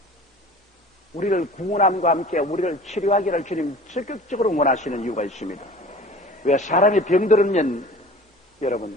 우리를 구원함과 함께 우리를 치료하기를 주님 적극적으로 원하시는 이유가 있습니다. 왜? 사람이 병들으면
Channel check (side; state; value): both; normal; correlation 0.42